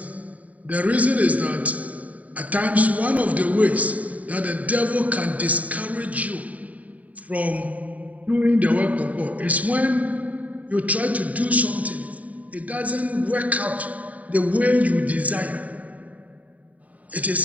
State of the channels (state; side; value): late; left; 0.070 ms